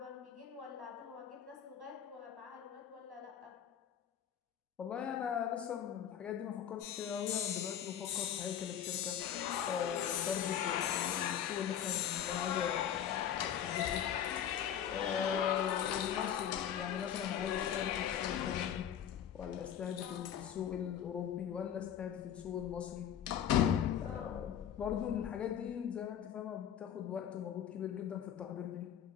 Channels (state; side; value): quieter; right; 9.4 dB